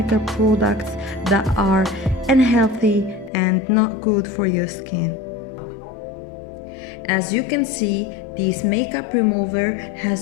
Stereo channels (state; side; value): drops out; right; at 3.3 s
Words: products that are unhealthy and not good for your skin. As you can see, this makeup remover